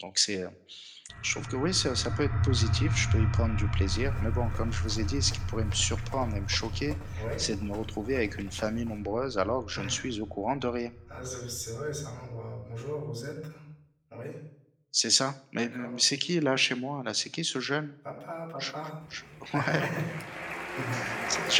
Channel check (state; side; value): identical; both; correlation 1.00